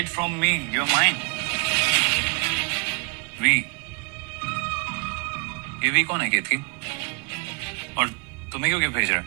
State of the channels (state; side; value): quieter; left; 34.3 dB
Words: from me, your mind. V, ये वी कौन है केतकी? और तुम्हें क्यों गिफ्ट भेज रहा